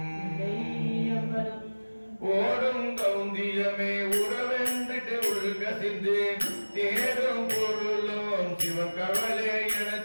ஓடும் கவுந்தியமே உறவென்றிட்டு உள்கசிந்து தேடும் பொருளும் சிவன் கவலை என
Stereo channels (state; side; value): inverted; both; correlation -1.00